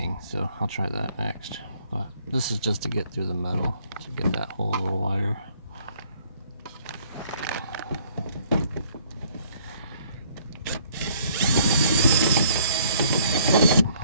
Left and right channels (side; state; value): both; inverted; correlation -0.61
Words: so I'll try that next. But this is just to get through the metal, to get that hole a little wider.